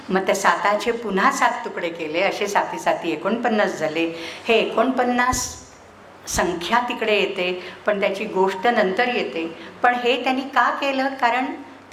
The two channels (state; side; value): identical; both; correlation 1.00